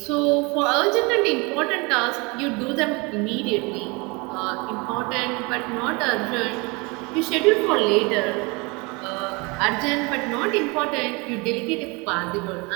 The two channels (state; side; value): quieter; left; 27.8 dB